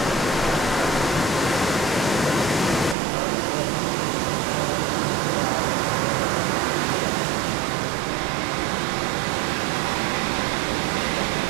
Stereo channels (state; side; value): drops out; left; at 3.0 s